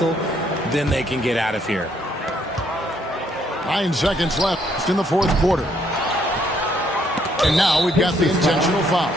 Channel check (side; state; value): both; normal; correlation 0.69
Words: Then they can get out of here. 9 seconds left in the fourth quarter. And now we've got the intentional foul.